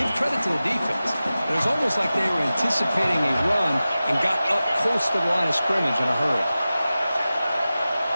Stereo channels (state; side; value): inverted; both; correlation -0.95